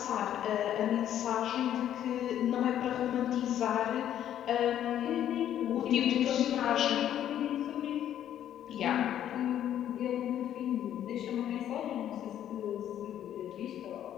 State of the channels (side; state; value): right; quieter; 10.8 dB